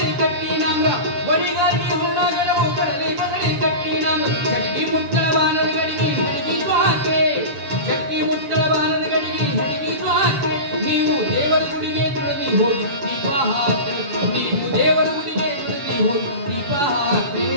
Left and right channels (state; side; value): late; left; 6.9 ms